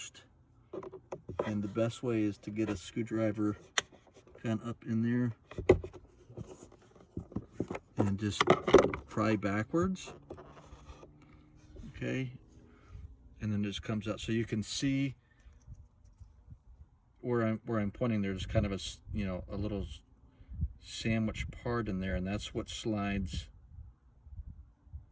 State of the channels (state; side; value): identical; both; correlation 1.00